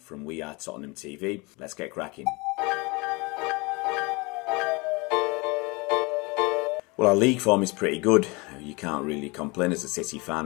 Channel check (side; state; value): right; quieter; 26.6 dB